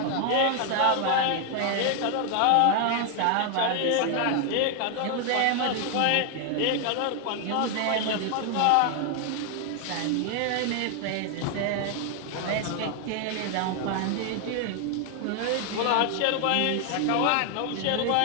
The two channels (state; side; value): different; both; correlation 0.00